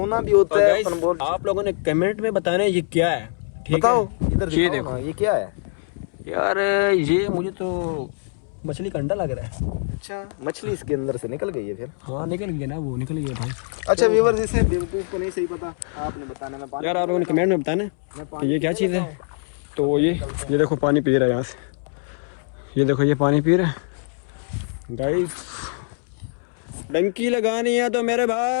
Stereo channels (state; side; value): silent; right; 63 dB below the other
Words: भी होता है। आप लोगों ने कमेंट में बताना है ये क्या है, ठीक है? इधर ये देखो, ये क्या है? यार ये मुझे तो मछली का अंडा लग रहा है। अच्छा, मछली इसके अंदर से निकल गई है फिर। हाँ निकल गया ना, वो निकल गया भाई। अच्छा व्यूअर्स, इसे बेवकूफ को नहीं सही पता, आपने बताने में यार आप लोगों ने कमेंट में बताना कि ये क्या चीज़ है। तो ये देखो पानी पी रहा है यहाँ से, ये देखो ये पानी पी रहा है गाइस। डंकी लगानी है तो मेरे